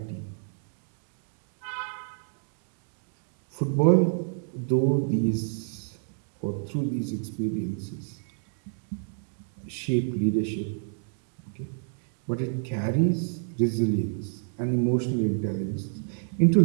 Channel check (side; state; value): left; silent; digital silence